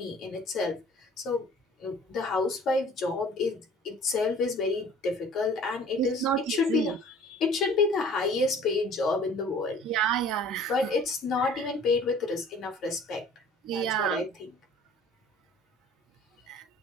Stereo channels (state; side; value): normal; both; correlation 0.49